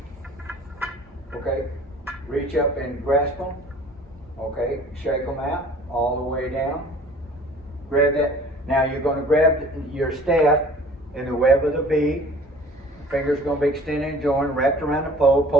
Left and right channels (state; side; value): normal; both; correlation 0.49